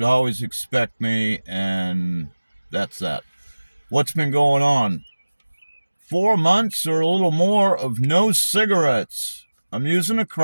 always expect me, and that's that. What's been going on? 4 months or a little more of no cigarettes. I'm using a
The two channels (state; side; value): inverted; both; correlation -1.00